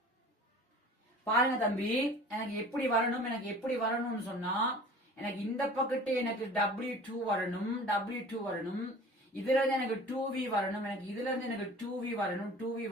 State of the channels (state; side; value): normal; both; correlation 0.44